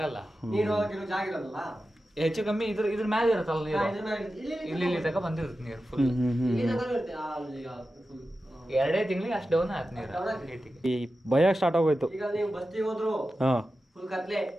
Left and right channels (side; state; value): both; normal; correlation 0.93